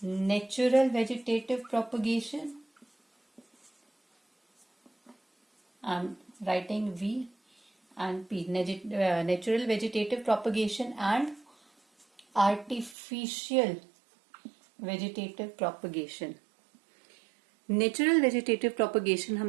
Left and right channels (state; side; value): drops out; left; at 13.0 s